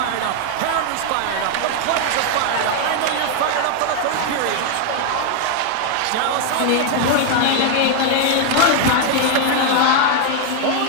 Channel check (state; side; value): different; both; correlation 0.00